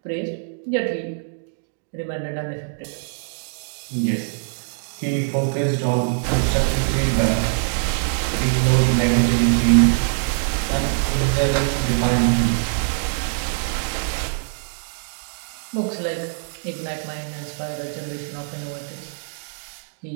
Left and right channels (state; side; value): silent; left; digital silence